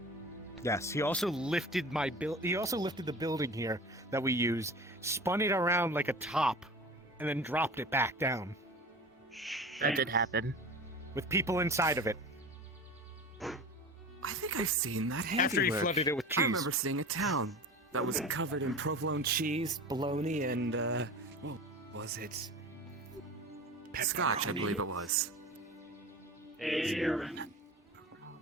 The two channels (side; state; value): both; normal; correlation 0.35